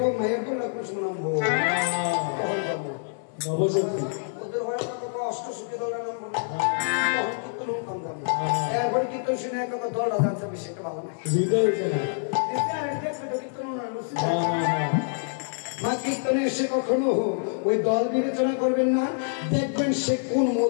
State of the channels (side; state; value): right; silent; digital silence